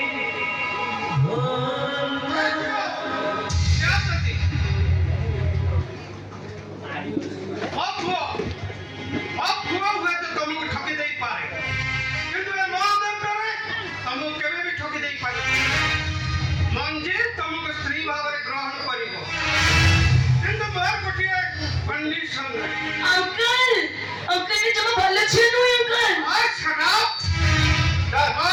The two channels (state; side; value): identical; both; correlation 1.00